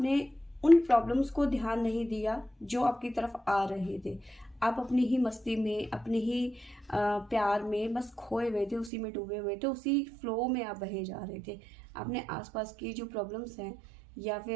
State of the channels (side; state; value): left; drops out; at 8.9 s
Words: उन प्रॉब्लम्स को ध्यान नहीं दिया जो आपकी तरफ आ रहे थे। आप अपनी ही मस्ती में, अपने ही प्यार में बस खोए हुए थे, उसी में डूबे हुए थे, उसी फ्लो में आप बहे जा रहे थे। आपने आसपास की जो प्रॉब्लम्स हैं या